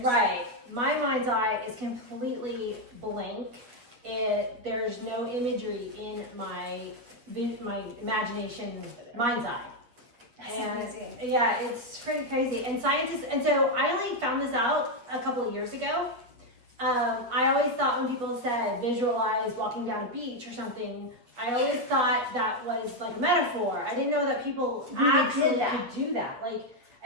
right. My mind's eye is completely blank. There's no imagery in my imagination mind's eye. That's And amazing. yeah, it's pretty crazy. And scientists, and so I only found this out a couple of years ago. I always thought when people said visualize walking down a beach or something, I always thought that was like a metaphor. I didn't know that people Really actually did that. could do that. Like,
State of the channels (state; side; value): late; left; 8.4 ms